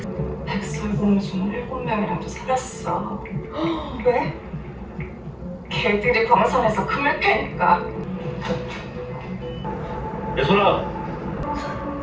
백설공주 7명이랑도 살았어. 왜? 걔들이 광산에서 금을 캐니까. 예솔아.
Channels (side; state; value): both; identical; correlation 1.00